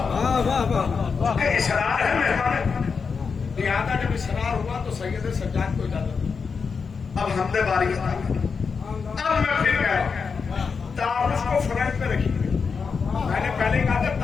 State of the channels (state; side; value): quieter; right; 5.4 dB